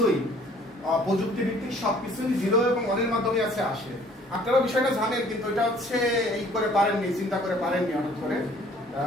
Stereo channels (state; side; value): normal; both; correlation 0.56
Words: প্রযুক্তি ভিত্তিক সবকিছুই 0 এবং 1 এর মাধ্যমে আসে। আপনারা বিষয়টা জানেন, কিন্তু এটা হচ্ছে এই করে পারেননি, চিন্তা করে পারেননি হঠাৎ করে।